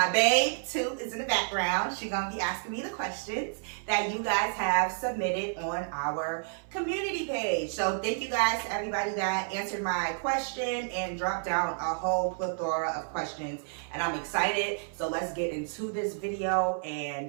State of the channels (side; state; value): left; silent; 58 dB below the other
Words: babe, Toot, is in the background. She's going to be asking me the questions that you guys have submitted on our community page. So thank you guys to everybody that answered my question and dropped down a whole plethora of questions. And I'm excited. So let's get into this video.